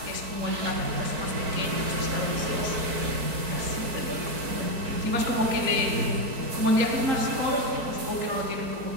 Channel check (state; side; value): late; left; 4.5 ms